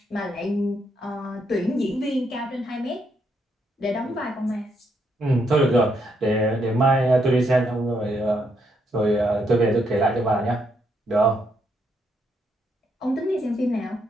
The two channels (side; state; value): both; normal; correlation 0.76